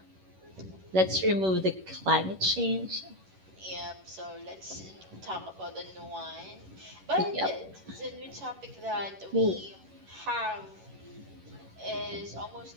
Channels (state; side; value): late; left; 11 ms